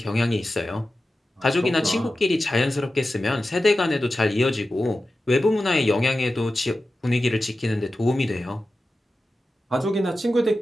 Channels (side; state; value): both; normal; correlation 0.94